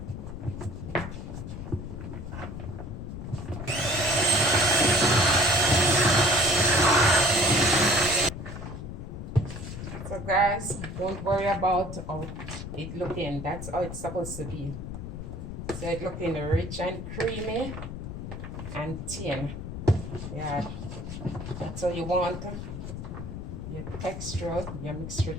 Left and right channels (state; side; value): noise; left; rumble, 8 dB below the sound